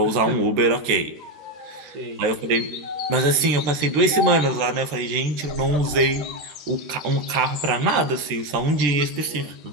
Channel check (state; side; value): late; left; 13 ms